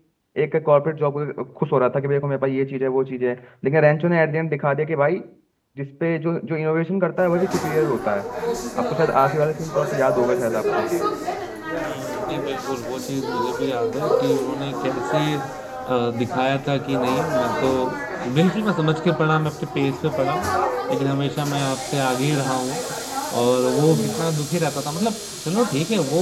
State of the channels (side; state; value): both; identical; correlation 1.00